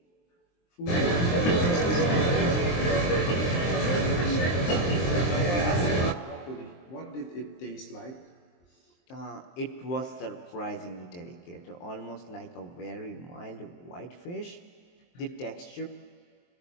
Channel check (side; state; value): right; late; 23 ms